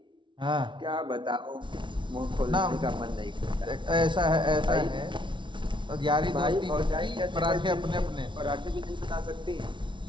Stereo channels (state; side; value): late; left; 0.24 ms